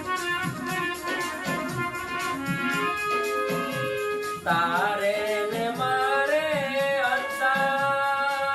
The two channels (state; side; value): identical; both; correlation 1.00